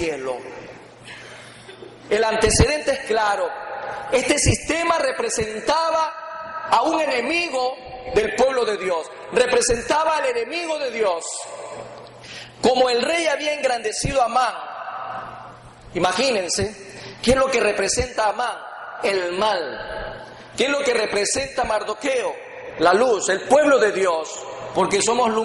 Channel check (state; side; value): identical; both; correlation 1.00